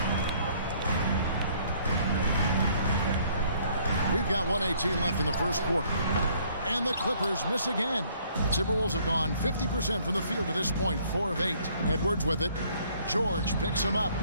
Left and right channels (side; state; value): both; inverted; correlation -0.62